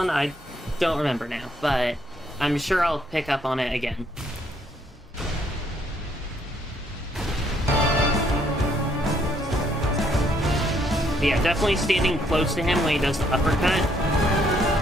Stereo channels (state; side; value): normal; both; correlation 0.69